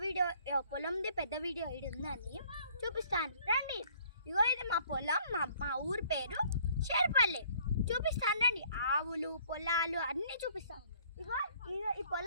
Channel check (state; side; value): inverted; both; correlation -0.58